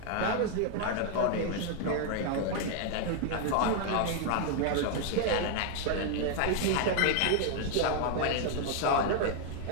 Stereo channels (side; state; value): both; different; correlation 0.00